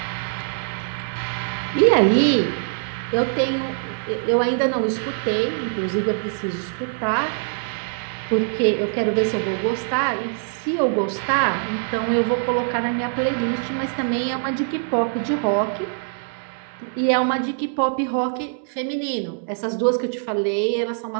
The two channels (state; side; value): silent; left; digital silence